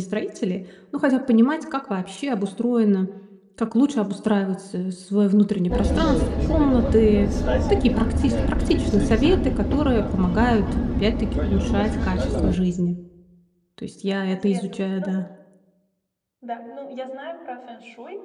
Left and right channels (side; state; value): both; identical; correlation 1.00